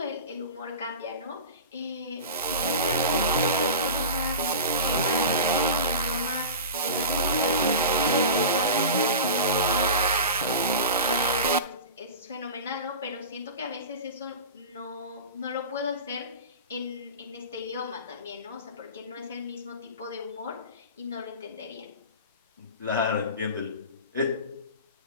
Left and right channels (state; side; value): inverted; both; correlation -0.32